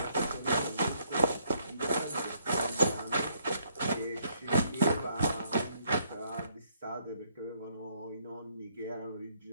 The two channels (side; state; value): both; inverted; correlation -0.70